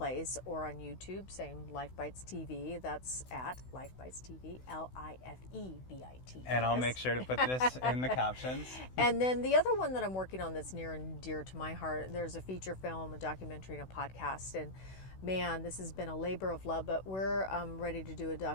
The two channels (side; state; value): right; late; 16 ms